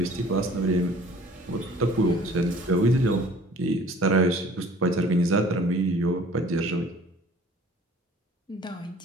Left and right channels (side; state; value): both; normal; correlation 0.50